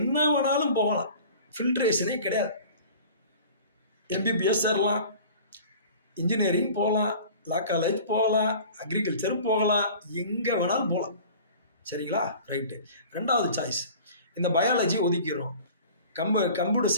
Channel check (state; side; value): inverted; both; correlation -0.43